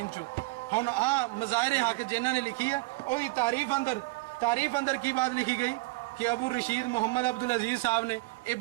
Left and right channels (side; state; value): left; quieter; 24.1 dB